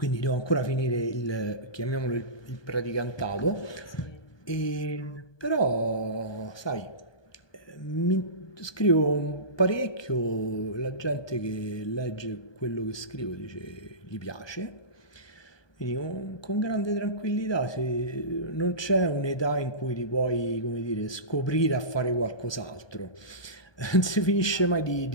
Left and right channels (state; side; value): late; right; 1.2 ms